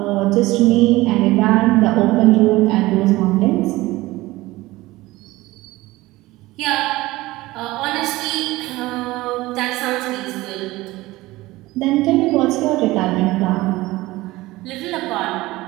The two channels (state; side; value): quieter; left; 19.0 dB